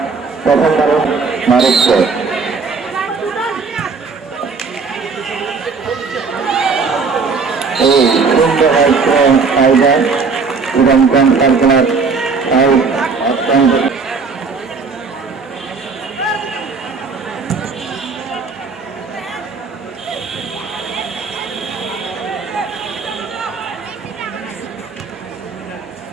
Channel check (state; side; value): quieter; left; 4.8 dB